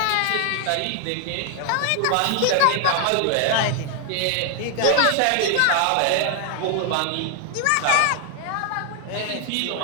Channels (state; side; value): different; both; correlation 0.00